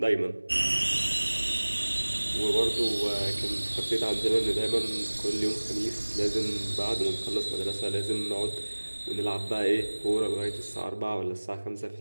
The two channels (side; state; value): both; inverted; correlation -1.00